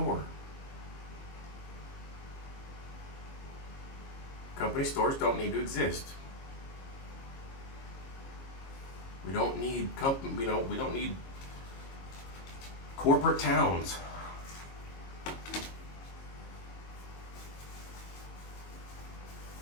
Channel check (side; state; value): right; late; 22 ms